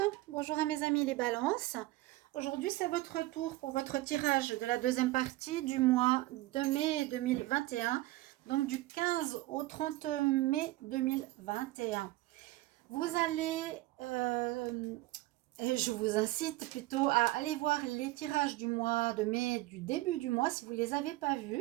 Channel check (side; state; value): left; quieter; 18.3 dB